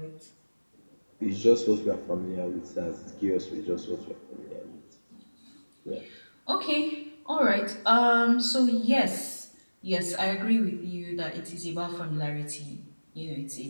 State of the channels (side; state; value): both; inverted; correlation -1.00